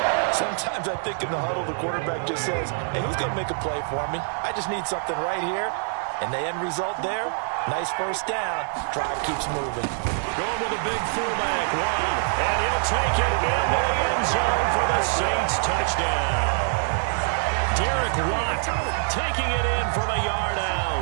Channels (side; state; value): left; silent; 62 dB below the other